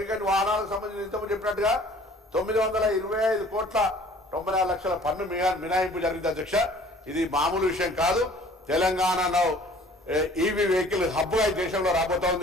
వాహనాలకు సంబంధించి ఇంతకు చెప్పినట్టుగా 925 కోట్ల 94 లక్షల పన్ను మినహాయింపు జరిగింది అధ్యక్ష. ఇది మామూలు విషయం కాదు. తెలంగాణలో ఈవీ వెహికల్ హబ్గా ఈ దేశంలో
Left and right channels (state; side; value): normal; both; correlation 0.52